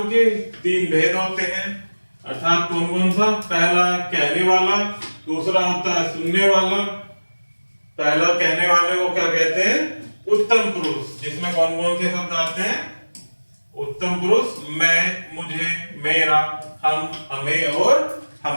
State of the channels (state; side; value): inverted; both; correlation -1.00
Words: के 3 भेद होते हैं, अर्थात कौन कौन सा? पहला कहने वाला, दूसरा होता है सुनने वाला। पहला कहने वाले को क्या कहते हैं? उत्तम पुरुष, जिसमें कौन कौन से शब्द आते हैं? उत्तम पुरुष मैं, मुझे, मेरा, हम, हमें और